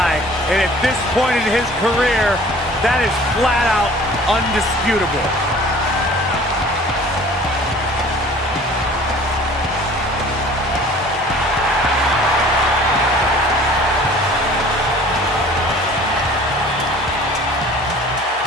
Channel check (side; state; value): both; normal; correlation 0.48